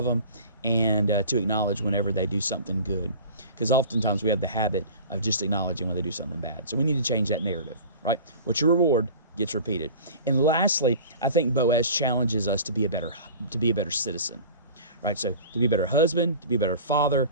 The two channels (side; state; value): both; inverted; correlation -0.40